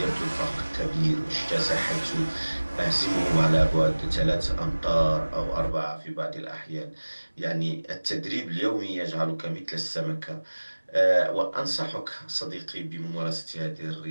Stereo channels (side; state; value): both; inverted; correlation -1.00